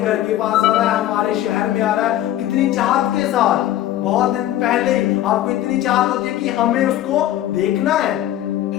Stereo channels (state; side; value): quieter; right; 13.2 dB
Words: के पास आ रहा है, हमारे शहर में आ रहा है। कितनी चाहत के साथ, बहुत दिन पहले आपको इतनी चाहत होती है कि हमें उसको देखना है,